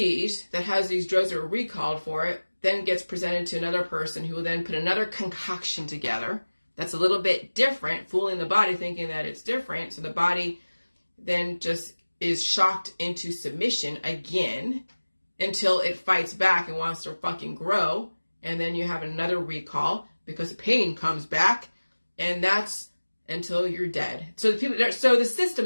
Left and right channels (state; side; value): inverted; both; correlation -1.00